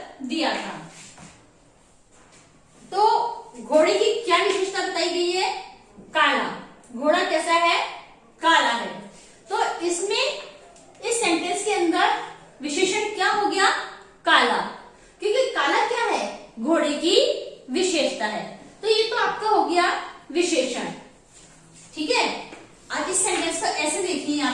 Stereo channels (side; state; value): both; identical; correlation 1.00